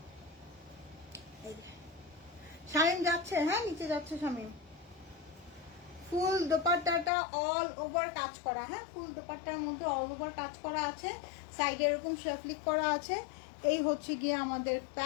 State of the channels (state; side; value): drops out; right; at 7.1 s